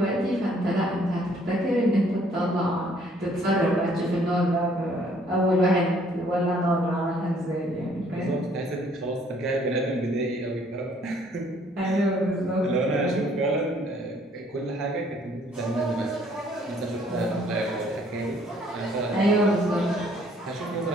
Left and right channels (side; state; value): both; normal; correlation 0.62